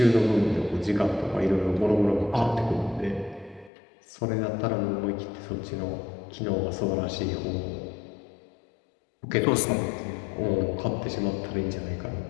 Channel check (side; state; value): right; drops out; at 3.7 s